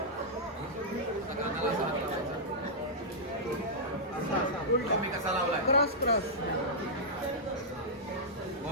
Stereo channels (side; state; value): both; normal; correlation -0.10